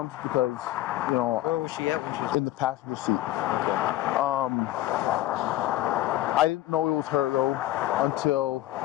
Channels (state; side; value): quieter; right; 14.8 dB